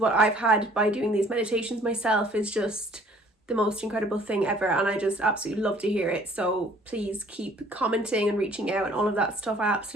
I've had by doing these meditations myself is just the most incredible thing ever, and I just absolutely love to hear it. So please keep commenting and reaching out and all of that stuff. I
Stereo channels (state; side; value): normal; both; correlation 0.56